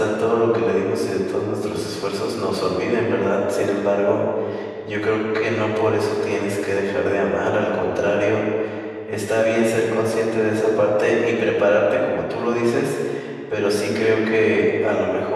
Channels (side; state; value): both; identical; correlation 1.00